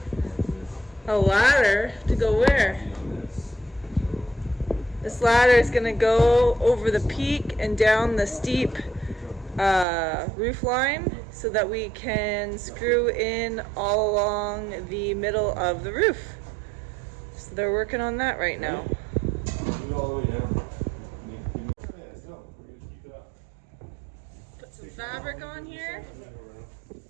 A ladder to go where? This ladder is gonna go over the peak and down the steep roof line so that we can screw in all along the middle of the roof. So they're working on that right now. Put some fabric on here.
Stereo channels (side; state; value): left; drops out; at 9.9 s